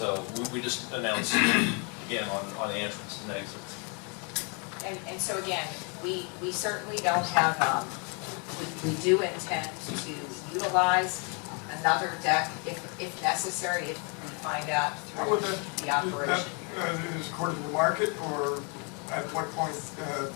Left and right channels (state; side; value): quieter; right; 35.4 dB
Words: we just announced again on the entrance and exits. And so again, we certainly don't have, we do intend to utilize another deck if necessary, if we find out How would through that, the operation. is according to market, or at what point